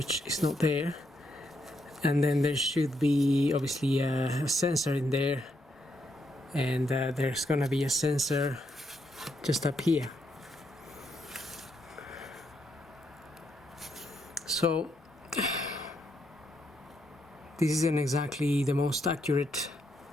is not there, and then there should be obviously a sensor in there, and there's gonna be a sensor just up here. So this isn't exactly the most accurate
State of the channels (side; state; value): both; normal; correlation 0.78